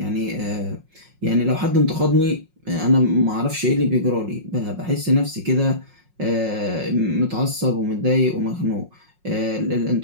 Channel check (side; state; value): left; late; 5.5 ms